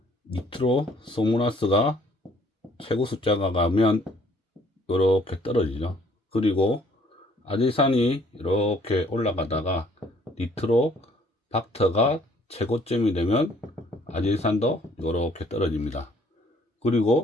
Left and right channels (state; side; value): normal; both; correlation 0.61